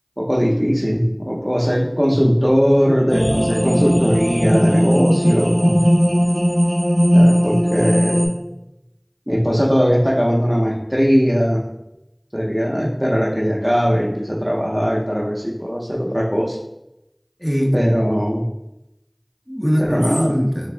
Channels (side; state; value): both; identical; correlation 1.00